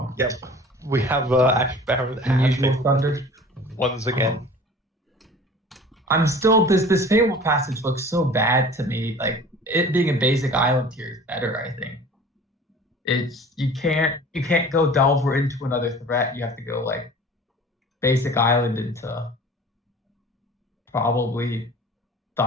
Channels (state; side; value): normal; both; correlation 0.44